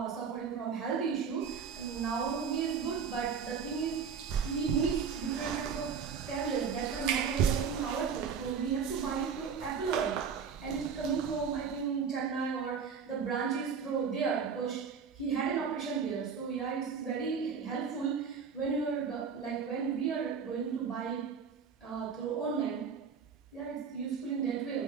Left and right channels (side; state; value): left; quieter; 6.3 dB